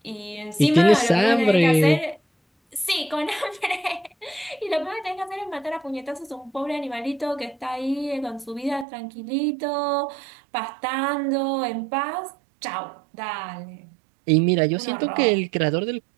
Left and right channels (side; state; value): left; drops out; at 8.8 s